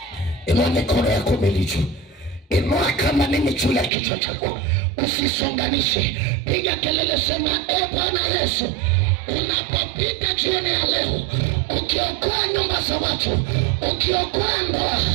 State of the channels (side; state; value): left; drops out; at 3.9 s